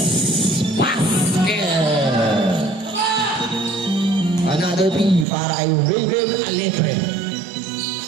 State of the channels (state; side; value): drops out; left; at 5.2 s